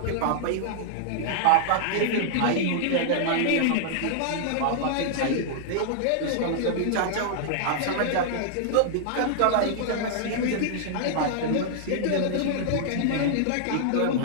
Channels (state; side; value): different; both; correlation -0.01